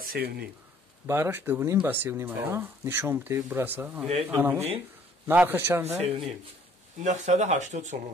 бараш 2.5 ба 3.5 ая. нишон бите бураса. Ине 2.5. нархи чанда? 3.5. 980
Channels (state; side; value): normal; both; correlation 0.59